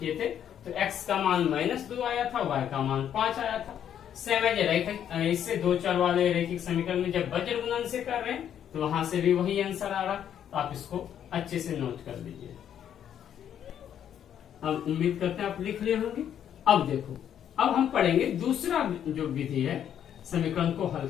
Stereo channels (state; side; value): quieter; right; 9.6 dB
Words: थे तो x का मान -2 आया था, y का मान 5 आया था। सेम है रैखिक, इससे दो चर वाले रैखिक समीकरण में जब वज्र गुणन से कर रहे हैं तो वहां से भी वही आंसर आ रहा, तो आप इसको अच्छे से नोट कर लीजिए। अब उम्मीद करते हैं आप लिख लिए होंगे। अब देखो, अब हम पढ़ेंगे दूसरा जो विधि है समीकरण को हल